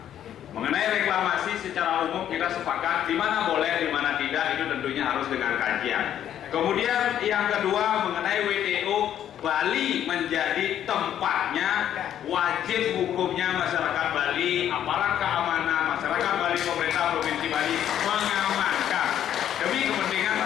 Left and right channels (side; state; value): right; quieter; 10.5 dB